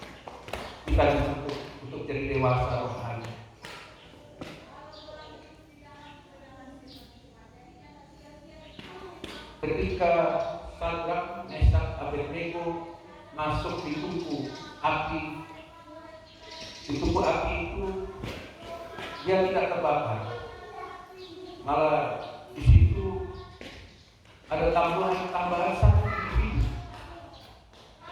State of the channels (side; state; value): both; identical; correlation 1.00